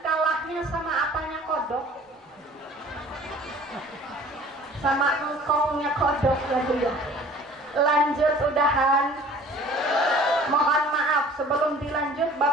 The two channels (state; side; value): normal; both; correlation 0.49